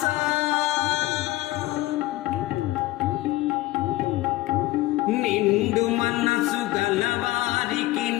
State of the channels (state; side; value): quieter; right; 17.7 dB